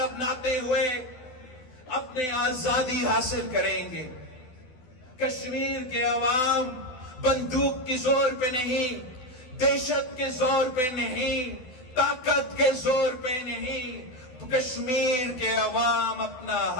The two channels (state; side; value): late; right; 12 ms